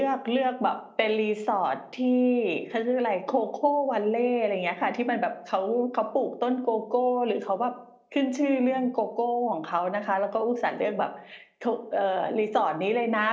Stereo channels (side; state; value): both; identical; correlation 1.00